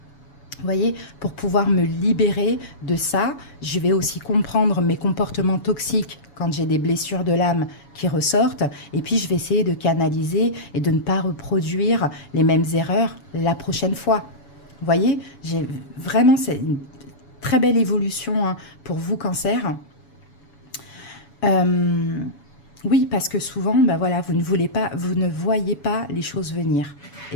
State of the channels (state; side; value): late; right; 7.1 ms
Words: Vous voyez, pour pouvoir me libérer de ça, je vais aussi comprendre mes comportements toxiques quand j'ai des blessures de l'âme qui ressortent. Et puis, je vais essayer de canaliser et de ne pas reproduire les mêmes erreurs la prochaine fois. Vous voyez, c'est une très belle évolution pour vous, cancer. Oui, parce que souvent, vous ne voyez pas les choses venir.